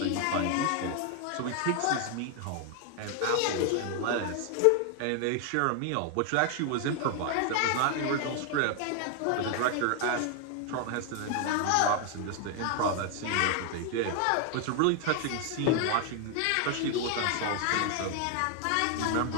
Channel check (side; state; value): both; different; correlation 0.00